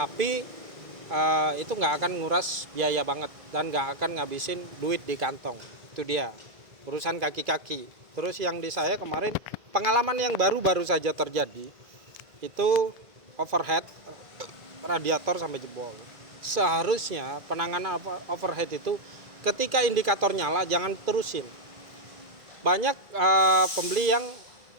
itu nggak akan nguras biaya banget dan nggak akan ngabisin duit di kantong. Itu dia urusan kaki-kaki. Terus yang di saya kemarin pengalaman yang baru saja terjadi itu overhead radiator sampai jebol. Seharusnya penanganan overhead itu ketika indikator nyala jangan terusin. Banyak pembeli yang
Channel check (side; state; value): left; late; 2.3 ms